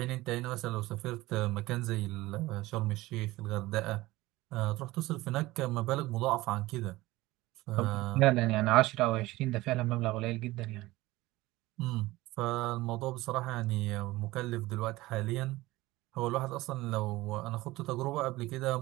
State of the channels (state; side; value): quieter; left; 18.8 dB